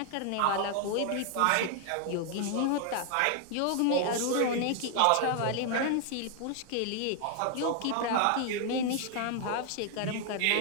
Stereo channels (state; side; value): different; both; correlation 0.00